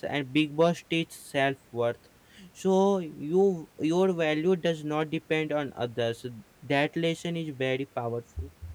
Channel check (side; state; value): both; identical; correlation 1.00